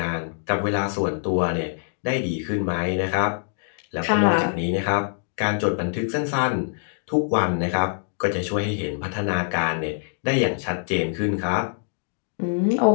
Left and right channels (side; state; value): right; silent; 60 dB below the other